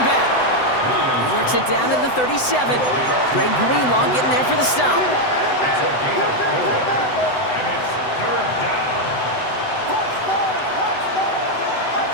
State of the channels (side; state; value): right; late; 7.9 ms